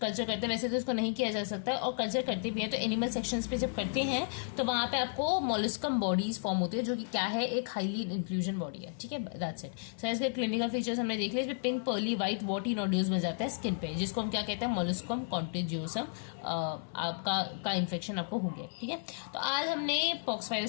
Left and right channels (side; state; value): right; silent; 56 dB below the other